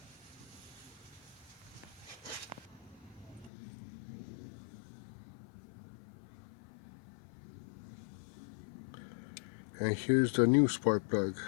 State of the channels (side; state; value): right; drops out; at 3.5 s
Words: And here's the new spark plug.